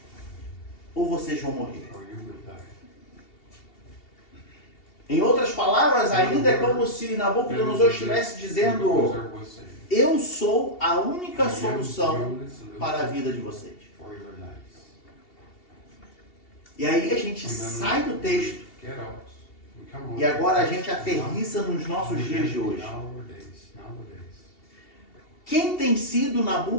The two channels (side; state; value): right; late; 2.7 ms